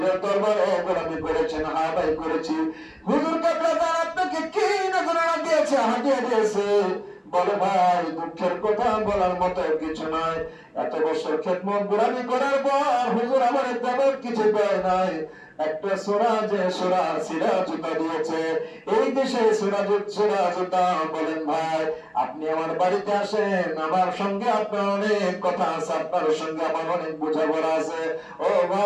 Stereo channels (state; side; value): identical; both; correlation 1.00